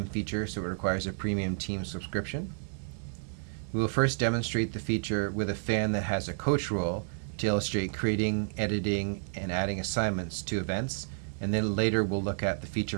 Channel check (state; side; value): silent; left; 57 dB below the other